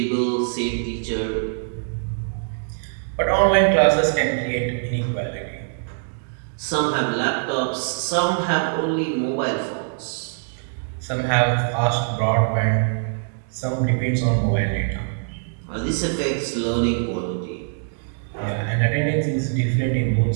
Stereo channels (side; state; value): left; silent; digital silence